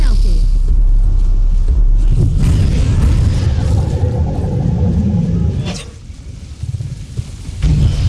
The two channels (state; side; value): identical; both; correlation 1.00